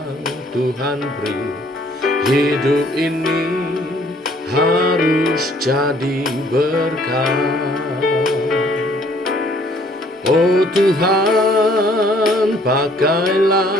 Tuhan beri. Hidup ini harus jadi berkat. Oh Tuhan,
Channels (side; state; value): both; normal; correlation 0.61